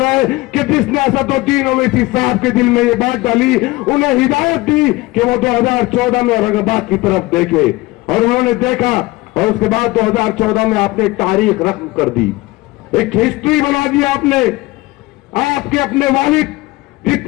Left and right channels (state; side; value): quieter; right; 20.6 dB